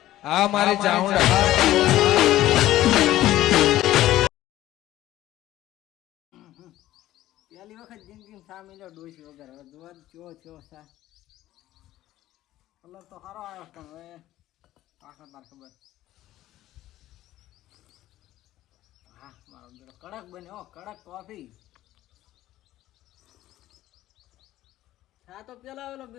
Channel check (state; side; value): quieter; right; 14.6 dB